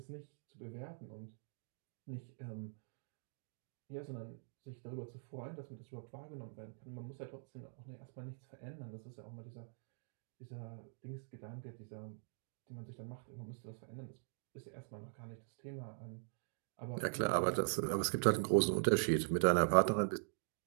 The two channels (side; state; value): left; silent; digital silence